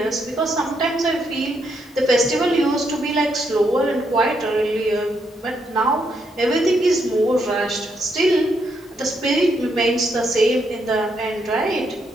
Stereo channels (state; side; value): normal; both; correlation 0.77